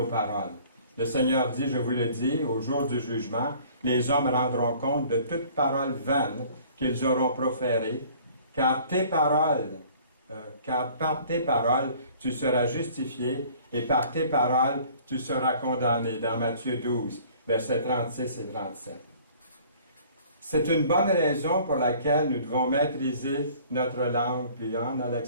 paroles. Le Seigneur dit, je vous le dis, au jour du jugement, les hommes rendront compte de toute parole vaine qu'ils auront proférée, car par tes paroles, tu seras justifié, et par tes paroles, tu seras condamné. Dans Matthieu 12, versets 36 et 37. C'est une bonne raison pour laquelle nous devons maîtriser notre langue. Puis on a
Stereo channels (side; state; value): both; inverted; correlation -0.52